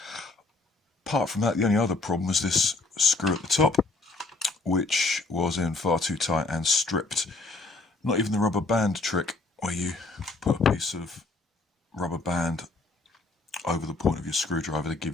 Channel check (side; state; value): right; quieter; 3.5 dB